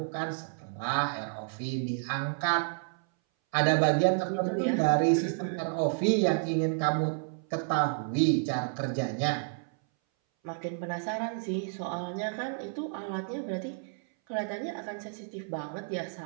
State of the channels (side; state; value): left; silent; 57 dB below the other